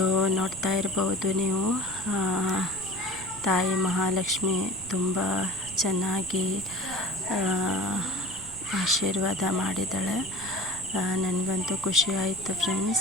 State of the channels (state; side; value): noise; right; rumble, 19 dB below the sound